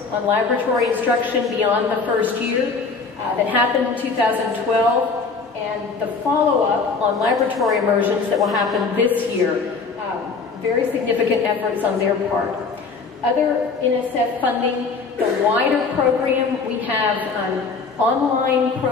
on laboratory instruction beyond the first year that happened in 2012, and the follow-up on laboratory immersions that will happen this year. Very significant efforts on their part. Other NSF funding, the wider program, we have an online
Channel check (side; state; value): right; quieter; 4.6 dB